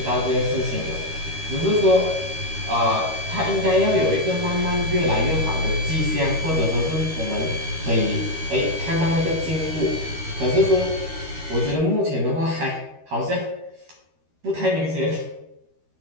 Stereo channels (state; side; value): late; left; 13 ms